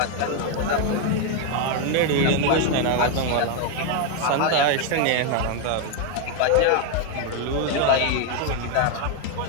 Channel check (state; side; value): different; both; correlation 0.01